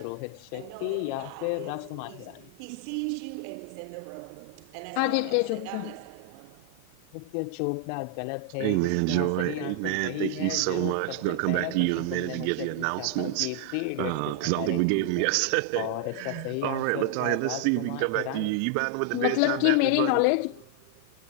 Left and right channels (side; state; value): both; different; correlation 0.00